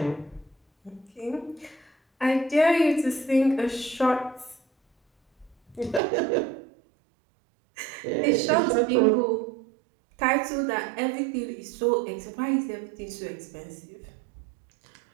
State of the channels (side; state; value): left; drops out; at 6.0 s